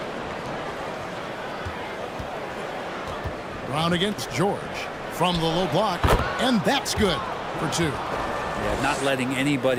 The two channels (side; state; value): both; identical; correlation 1.00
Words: Brown against George from the low block, and that's good for 2. Yeah, not letting